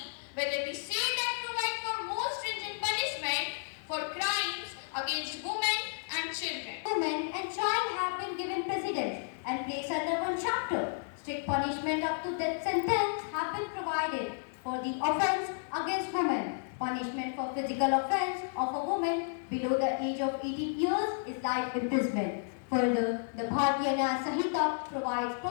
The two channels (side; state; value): right; silent; digital silence